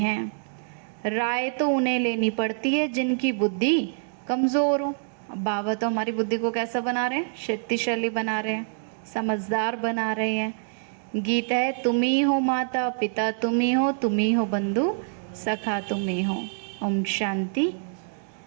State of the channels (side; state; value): left; silent; digital silence